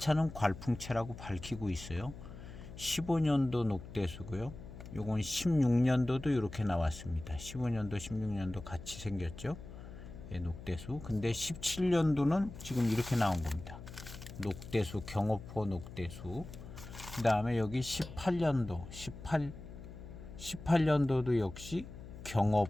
괄풍채라고 밝히고 있어요. 15년도 녹대수고요. 요건 16년도도 이렇게 나왔습니다. 15년도 16년도 같이 생겼죠. 녹대수. 근데 17년도는 지금 이렇게 나온 겁니다. 녹대수, 경어포 녹대수. 그 다음에 여기 18년도 18년도도 역시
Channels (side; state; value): left; noise; hum, 13 dB below the sound